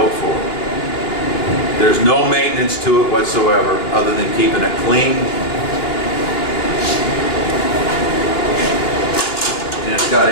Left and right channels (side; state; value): right; late; 2.9 ms